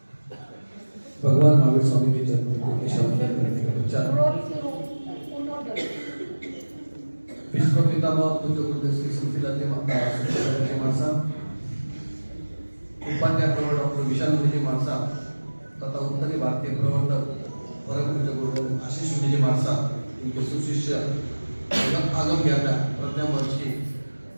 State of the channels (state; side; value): inverted; both; correlation -1.00